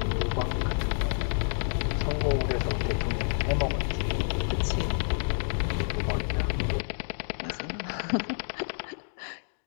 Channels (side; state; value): right; silent; digital silence